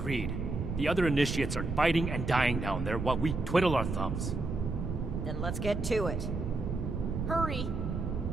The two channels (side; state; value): right; noise; rumble, 3 dB below the sound